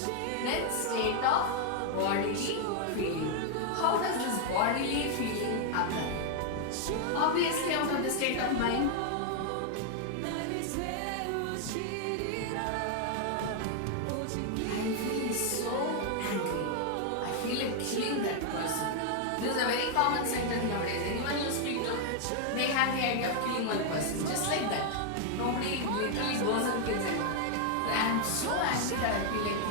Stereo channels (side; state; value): both; different; correlation 0.00